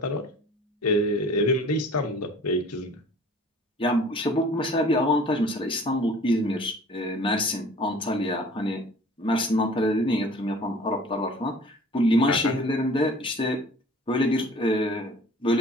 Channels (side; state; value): both; normal; correlation 0.48